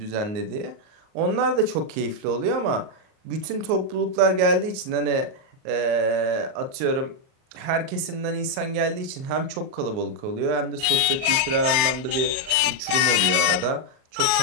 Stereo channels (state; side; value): late; left; 37 ms